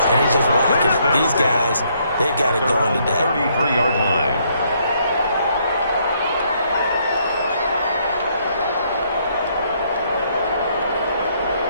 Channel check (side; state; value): both; inverted; correlation -0.70